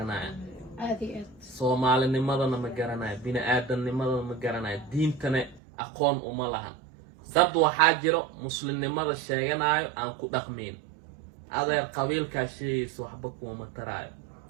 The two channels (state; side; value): drops out; left; at 5.6 s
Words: Soomaalinimadana ma garanayaan bini'aadamnimadana ma garanayaan diintana aqoon uma lahan dad waxaa jiro muslimnimada sheeganayo aan ku dhaqmin adeer qabiilkaa sheegaysa waxba kuma taraayo